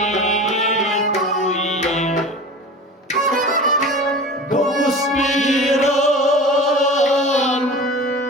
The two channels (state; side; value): normal; both; correlation 0.35